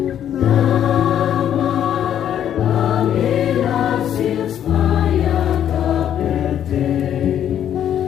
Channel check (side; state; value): right; quieter; 10.1 dB